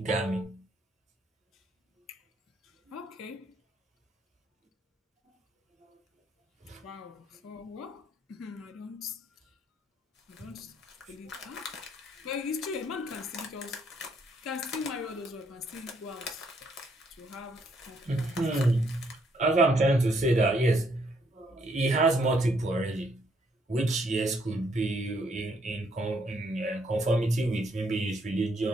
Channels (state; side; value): normal; both; correlation 0.71